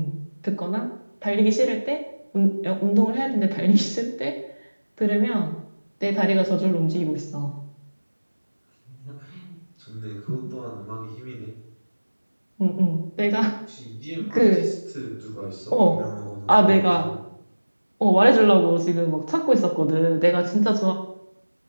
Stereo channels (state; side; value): inverted; both; correlation -1.00